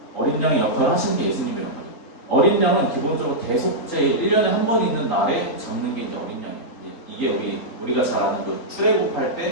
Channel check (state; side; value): late; right; 3.8 ms